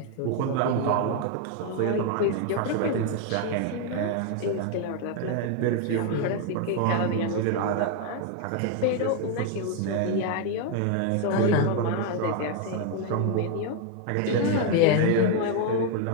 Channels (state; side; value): different; both; correlation 0.01